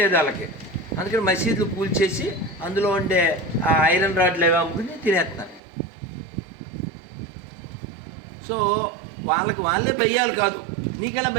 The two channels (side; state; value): left; drops out; at 5.6 s